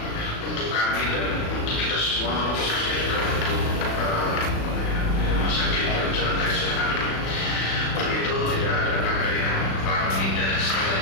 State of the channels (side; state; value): right; late; 36 ms